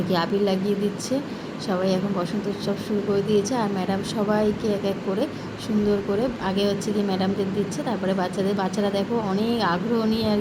কি আবির লাগিয়ে দিচ্ছে। সবাই এখন বসন্ত উৎসব শুরু করে দিয়েছে। আর ম্যাডাম সবাইকে এক এক করে সুন্দর করে আগে হচ্ছে কি ম্যাডামদের দিচ্ছে, তারপরে বাচ্চারা দেখো অনেক আগ্রহ নিয়ে আর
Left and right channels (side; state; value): both; identical; correlation 1.00